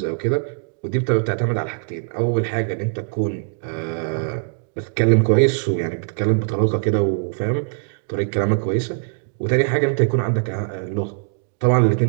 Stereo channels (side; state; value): left; silent; digital silence